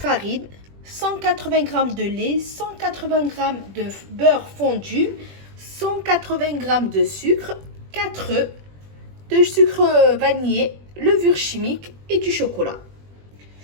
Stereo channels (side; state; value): left; late; 20 ms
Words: 180 g de lait, 180 g de beurre fondu, 180 g de sucre, 4 œufs, de sucre vanillé, levure chimique et du chocolat.